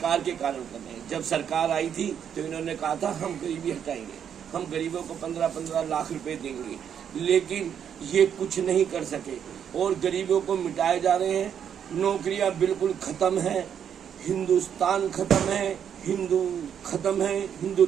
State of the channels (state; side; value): quieter; left; 8.5 dB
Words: के कारण कर रहे हैं। जब सरकार आई थी तो इन्होंने कहा था हम गरीबी हटाएंगे, हम गरीबों को 15-15 लाख रुपए देंगे, लेकिन ये कुछ नहीं कर सके और गरीबों को मिटाए जा रहे हैं। नौकरियां बिल्कुल खत्म है, हिंदुस्तान खत्म है, हिंदू खत्म है।